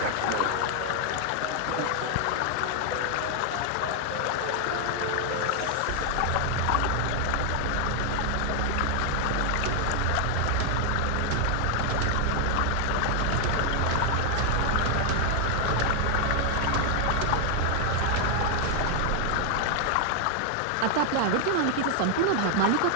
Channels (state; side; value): different; both; correlation 0.00